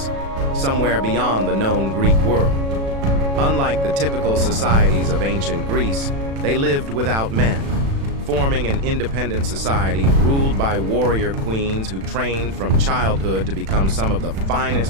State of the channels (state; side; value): late; left; 36 ms